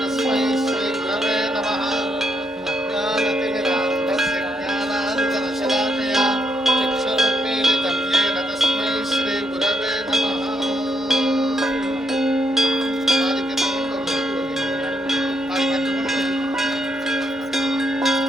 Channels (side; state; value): both; normal; correlation 0.77